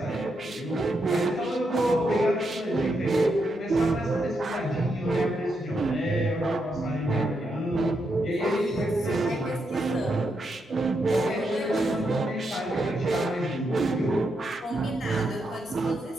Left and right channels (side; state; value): both; normal; correlation 0.82